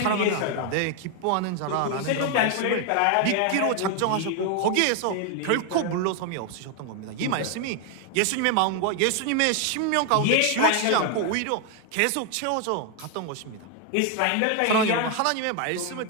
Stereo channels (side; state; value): both; different; correlation 0.01